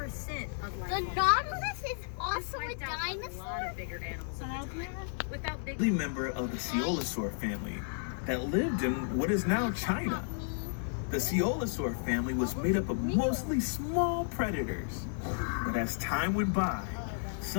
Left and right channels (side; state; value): right; silent; 56 dB below the other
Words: of life. The Nautilus is This also a wiped out a lot dinosaur? of bigger animals at the time. Without big Early member of the Coelosaur family that lived in what is now China. The Coelosaur family was made up of mostly small predators. But as time went by,